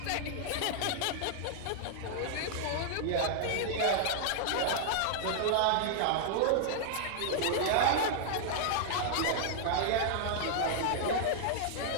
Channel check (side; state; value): both; different; correlation -0.01